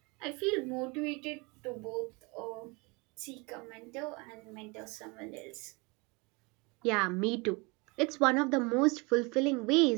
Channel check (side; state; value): left; quieter; 27.9 dB